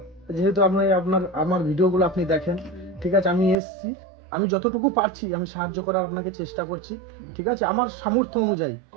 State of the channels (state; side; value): drops out; left; at 3.6 s